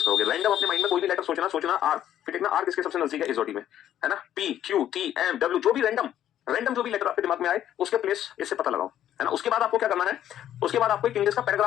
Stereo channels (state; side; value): quieter; right; 11.2 dB